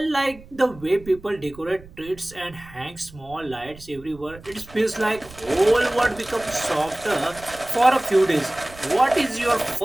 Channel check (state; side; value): noise; right; rumble, 20 dB below the sound